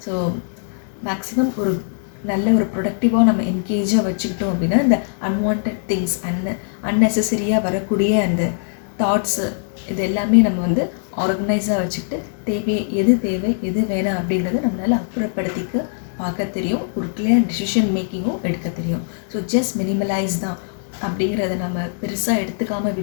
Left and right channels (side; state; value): right; silent; 65 dB below the other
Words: ஸோ மேக்ஸிமம் ஒரு நல்ல ஒரு ப்ரொடக்டிவாக நம்ம என்கேஜாக வச்சுக்கிட்டோம் அப்படின்னா இந்த அன்வான்ட் திங்ஸ் அன்னெசரியாக வரக்கூடிய அந்த தாட்ஸு இது எல்லாமே நம்ம வந்து ஆர்கனைஸாக வச்சுக்கிட்டு தேவை எது வேணாம் அப்படிங்கிறத நம்மளால் அப்புறப்படுத்திக்க பார்க்க தெரியும். ஒரு கிளியர் டிசிஷன் மேக்கிங்கும் எடுக்க தெரியும். ஸோ ஜஸ்ட் மினிமலைஸ் தான் அப்படிங்கிறத நம்ம பெருசாக எடுத்துக்காமல்